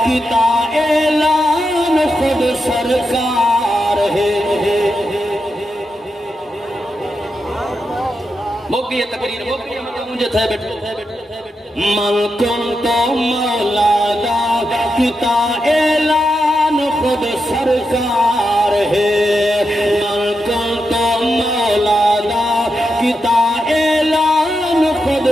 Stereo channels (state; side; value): normal; both; correlation 0.86